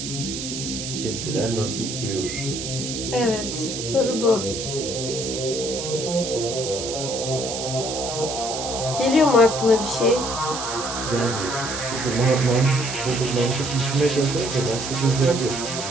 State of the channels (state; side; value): noise; right; hiss, 6 dB below the sound